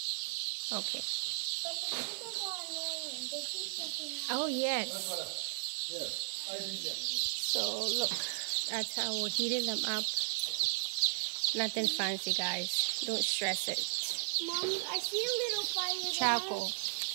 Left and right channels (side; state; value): left; silent; digital silence